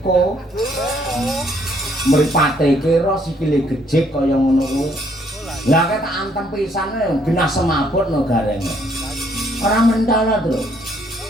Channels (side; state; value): both; normal; correlation 0.67